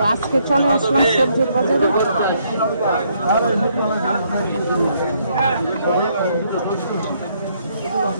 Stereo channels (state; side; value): inverted; both; correlation -0.71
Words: আজকে চলে আসলাম সবজির বাজারে।